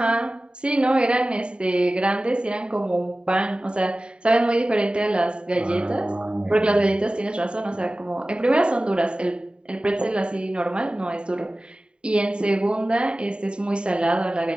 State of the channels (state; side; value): late; left; 0.051 ms